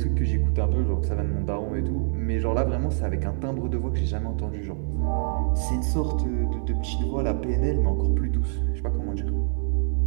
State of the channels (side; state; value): left; silent; 61 dB below the other